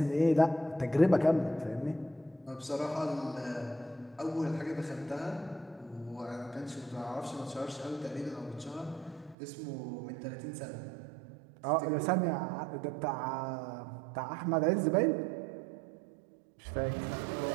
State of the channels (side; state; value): left; drops out; at 9.3 s